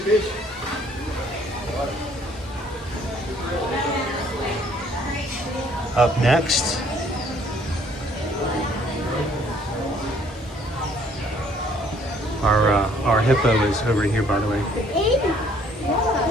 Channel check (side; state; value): both; normal; correlation 0.61